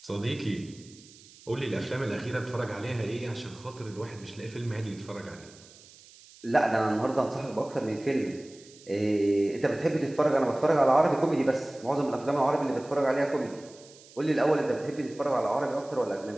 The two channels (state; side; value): noise; right; hiss, 23 dB below the sound